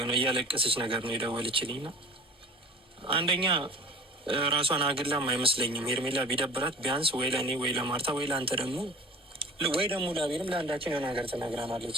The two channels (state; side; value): normal; both; correlation 0.41